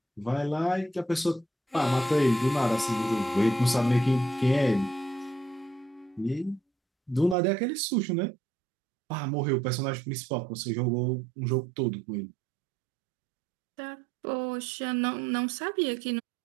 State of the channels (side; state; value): left; drops out; at 7.4 s